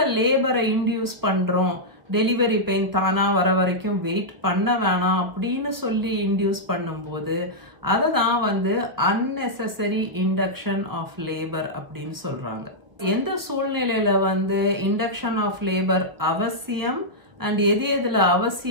லேபரை இன்டியூஸ் பண்றோம், டெலிவரி பெயின் தானா வர வரைக்கும் வெயிட் பண்ண வேணாம் அப்படின்னு சொல்லி இன்டியூஸ் பண்ணும்போது அதை தான் வந்து அன்னெசசரி இண்டக்ஷன் ஆஃப் லேபர் அப்படின்னு சொல்றாங்க. எந்த சூழ்நிலையில வந்து இண்டக்ஷன் ஆஃப் லேபர் அவசியம் அண்ட் எது எதுல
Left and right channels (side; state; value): left; late; 1.2 ms